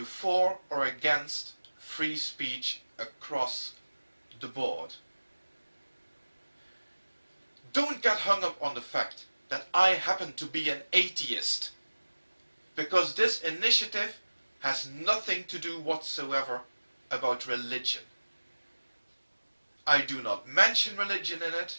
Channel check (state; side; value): inverted; both; correlation -1.00